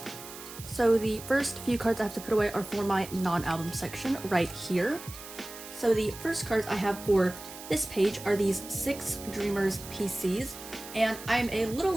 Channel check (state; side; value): noise; right; hiss, 14 dB below the sound